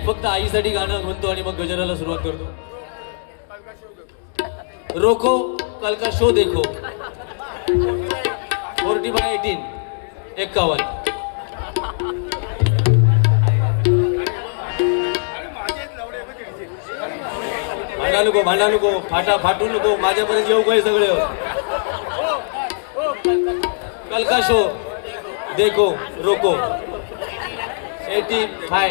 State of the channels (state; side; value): silent; right; digital silence